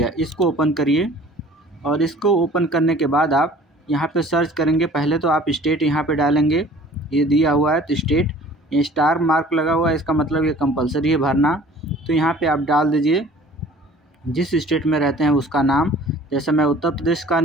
इसको ओपन करिए। और इसको ओपन करने के बाद आप यहाँ पे सर्च करेंगे। पहले तो आप स्टेट यहाँ पे डालेंगे, ये दिया हुआ है तो स्टेट, ये स्टार मार्क लगा हुआ है, इसका मतलब ये कंपलसरी है भरना। तो यहाँ पे आप डाल दीजिए जिस स्टेट में रहते हैं उसका नाम। जैसे मैं उत्तर प्रदेश का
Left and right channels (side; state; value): both; normal; correlation 0.49